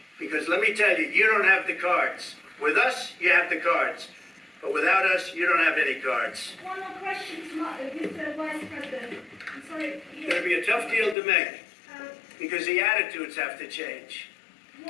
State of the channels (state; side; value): drops out; right; at 11.2 s